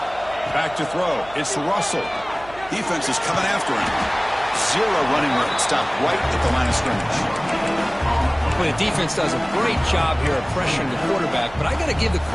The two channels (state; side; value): noise; right; hum, 20 dB below the sound